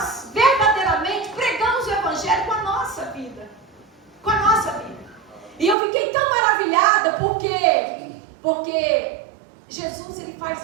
verdadeiramente pregamos o evangelho com a nossa vida, com a nossa vida. E eu fiquei tão maravilhada porque Jesus, ele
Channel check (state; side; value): drops out; left; at 5.8 s